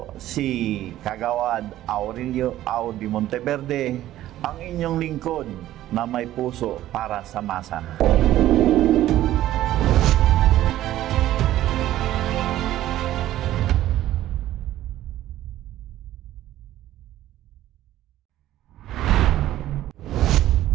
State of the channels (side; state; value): left; quieter; 13.8 dB